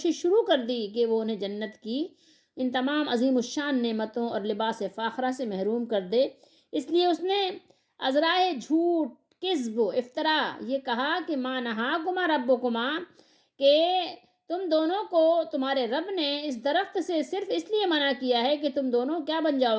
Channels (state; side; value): identical; both; correlation 1.00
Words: شروع کر دی کہ وہ انہیں جنت کی ان تمام عظیم الشان نعمتوں اور لباس فاخرہ سے محروم کر دے۔ اس لیے اس نے عذرائے جھوٹ، کذب و افطرا یہ کہا کہ ما نہاکما ربکما، کہ تم دونوں کو تمہارے رب نے اس درخت سے صرف اس لیے منع کیا ہے کہ تم دونوں کیا بن